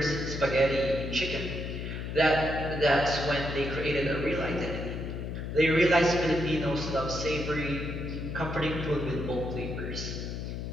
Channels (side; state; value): left; noise; hum, 5 dB below the sound